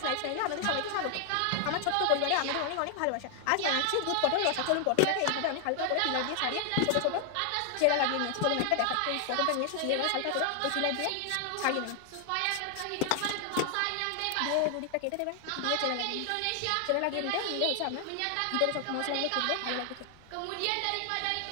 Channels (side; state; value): both; different; correlation 0.00